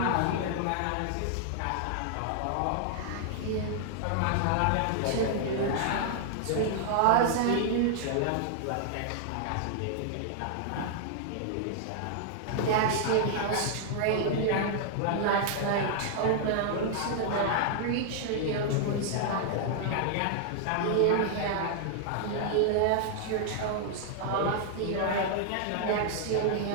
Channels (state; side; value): different; both; correlation -0.01